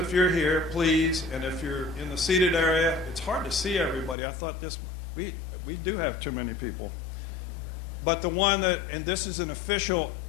you're here, please, and if you're in the seated area. It's hard to see everybody. I thought we do have too many people. But the one that, and this is an official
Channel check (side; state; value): right; drops out; at 4.2 s